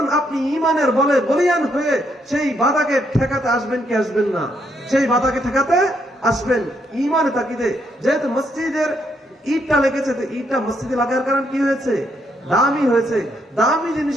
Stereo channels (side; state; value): both; normal; correlation 0.75